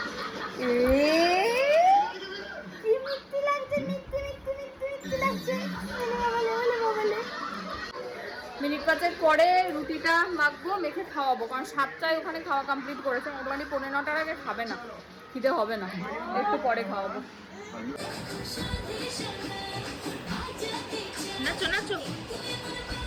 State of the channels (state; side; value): identical; both; correlation 1.00